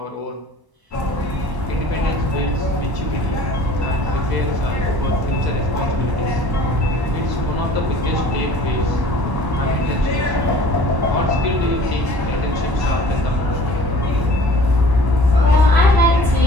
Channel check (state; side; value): late; left; 1.1 ms